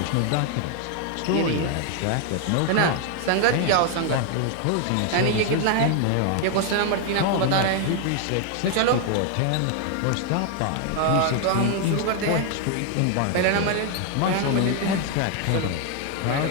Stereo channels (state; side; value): different; both; correlation 0.00